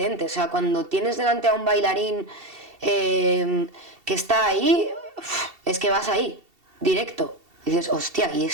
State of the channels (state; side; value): late; left; 2.7 ms